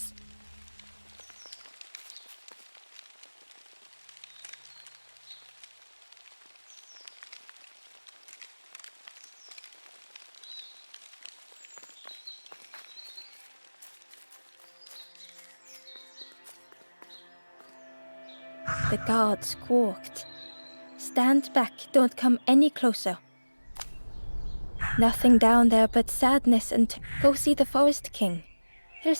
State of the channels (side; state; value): both; inverted; correlation -1.00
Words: The guard squawked. Stand back, don't come any closer. Nothing down there but sadness and go see the Forest King. He'll